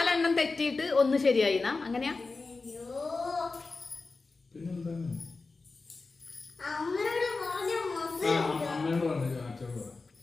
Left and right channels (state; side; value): quieter; right; 3.9 dB